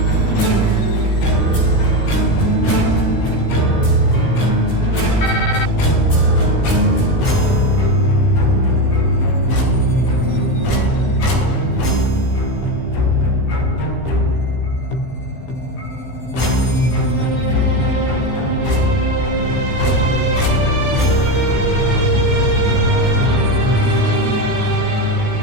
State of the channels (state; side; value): late; right; 15 ms